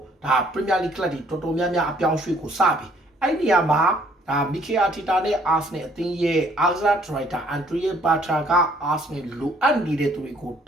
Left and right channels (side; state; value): both; normal; correlation 0.62